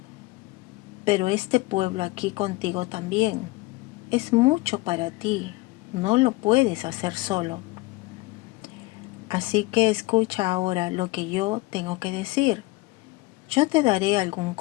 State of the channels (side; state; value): right; quieter; 21.6 dB